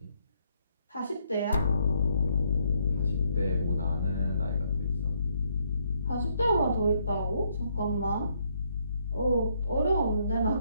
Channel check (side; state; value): both; inverted; correlation -0.72